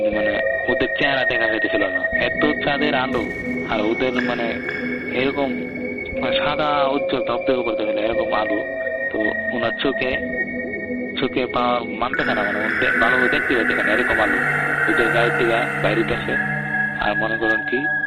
মানে ওদের চেহারা দেখা যাইতেছিল না, এত চাঁদের আলো আর ওদের মানে এরকম সাদা উজ্জ্বল ধপধপে করতেছিল এরকম আলো। তো ওনার চোখে মানতেছে না, মানে ভালো দেখতে পাচ্ছে না এরকম আলো ওদের গায়ের থেকে বাইরেতেছে। আর মনে করেন কি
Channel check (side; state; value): both; identical; correlation 1.00